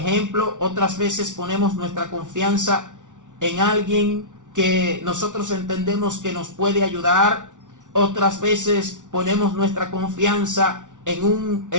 Otras veces ponemos nuestra confianza en alguien que nosotros entendemos que nos puede ayudar. Otras veces ponemos nuestra confianza en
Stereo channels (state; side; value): late; left; 0.87 ms